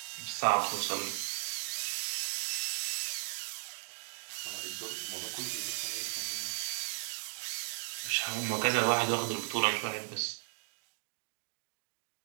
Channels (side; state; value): left; silent; digital silence